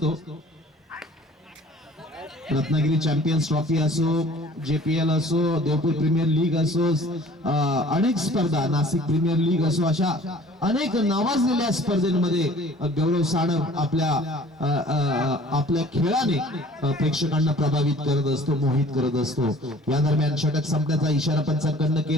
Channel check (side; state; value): both; normal; correlation 0.50